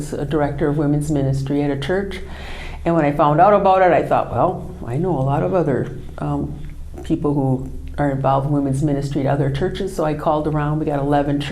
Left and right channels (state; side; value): identical; both; correlation 1.00